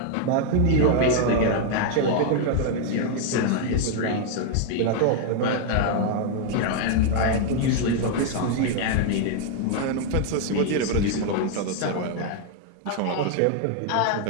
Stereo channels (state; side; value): different; both; correlation 0.00